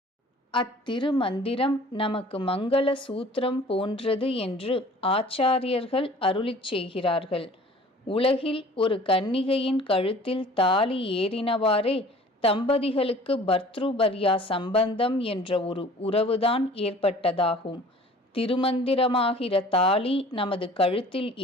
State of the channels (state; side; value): normal; both; correlation 0.48